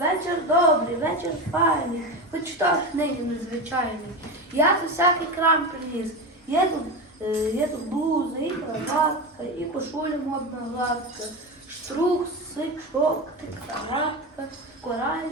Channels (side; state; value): both; normal; correlation 0.21